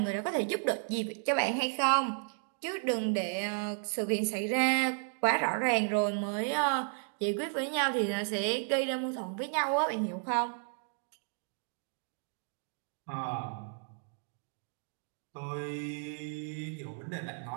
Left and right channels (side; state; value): left; silent; 55 dB below the other